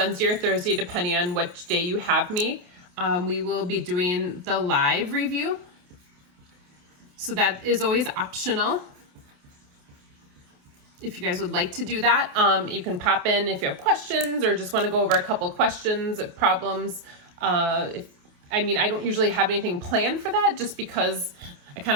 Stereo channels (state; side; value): late; left; 28 ms